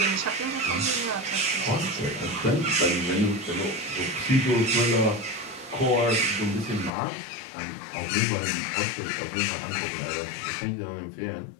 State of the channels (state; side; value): drops out; right; at 6.9 s